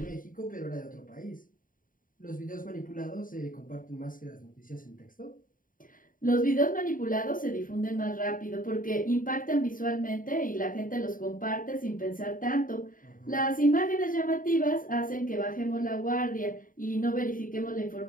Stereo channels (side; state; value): right; late; 0.40 ms